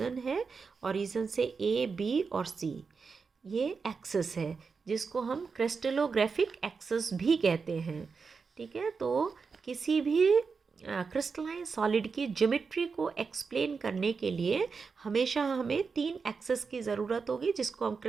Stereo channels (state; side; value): quieter; left; 5.1 dB